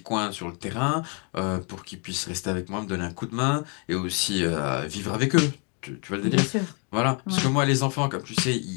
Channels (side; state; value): right; quieter; 36.8 dB